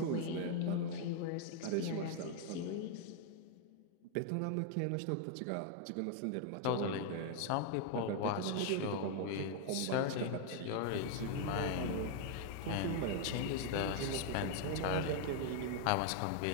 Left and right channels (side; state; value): both; different; correlation 0.00